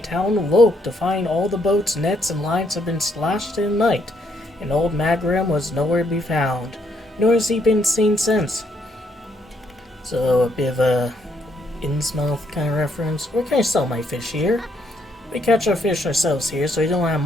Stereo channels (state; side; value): normal; both; correlation 0.73